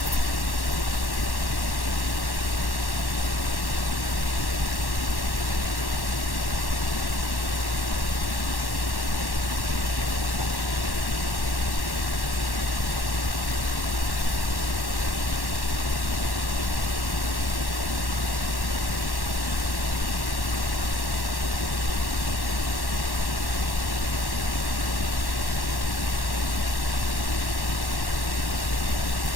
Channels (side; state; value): right; late; 1.1 ms